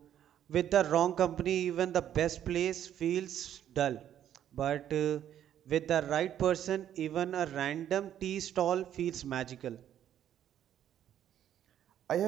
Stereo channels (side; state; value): left; quieter; 10.6 dB